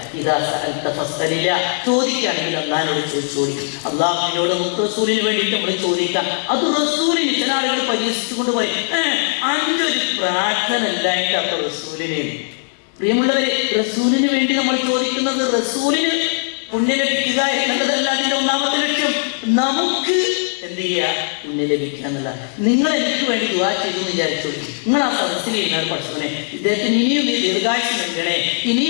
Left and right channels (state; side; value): silent; right; 59 dB below the other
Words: ഇതാ ചോദിക്കുകയാണെങ്കിൽ അല്ലാഹുവിനോട് ചോദിച്ചോളി. അല്ലാഹുവിനോട് നമുക്ക് റസൂലിന് വേണ്ടിയിട്ട് നമ്മൾ ചോദിക്കാം. അത് റസൂലിന് ചില ആളുകൾ പരിഹസിച്ചുകൊണ്ട് പറയും, 5 പ്രാർത്ഥന ഇല്ലായിട്ട് അപ്പൊ റസൂലിന്. പ്രിയമുള്ളവരെ, റസൂലിന് വേണ്ടി നമ്മൾ ചോദിക്കുന്നത് റസൂലിന് പുണ്യം ലഭിക്കുക എന്നതല്ല അതിന്റെ ഒന്നാമത്തെ ലക്ഷ്യം. നമുക്ക് എന്ത് ചെയ്യുക? പുണ്യം ലഭിക്കുക എന്നല്ല. നിങ്ങൾ എനിക്ക് വേണ്ടി ദുആ ചെയ്തു വിചാരിച്ചു. നിങ്ങൾ ആ സദസ്സിൽ ഇരുന്ന പഠിച്ചവനെ ഇദ്ദേഹത്തിന് ഇനിയും ദീർഘായുസ്സ് നൽകണേ,